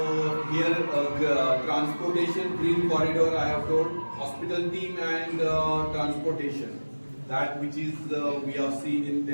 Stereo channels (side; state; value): both; inverted; correlation -1.00